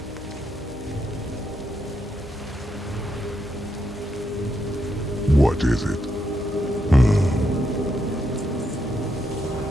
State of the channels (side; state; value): both; normal; correlation 0.80